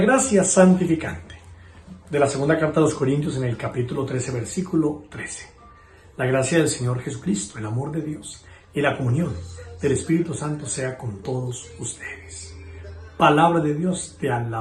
santificante de la segunda carta a los Corintios en el capítulo 13, versículo 13. La gracia del Señor Jesucristo, el amor de Dios y la comunión del Espíritu Santo sea con todos ustedes. Palabra de Dios, te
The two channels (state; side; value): identical; both; correlation 1.00